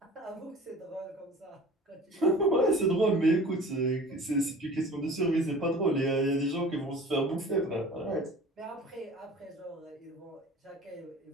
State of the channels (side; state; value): both; normal; correlation 0.43